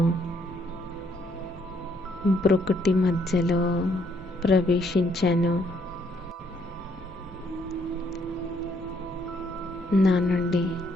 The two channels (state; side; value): normal; both; correlation 0.70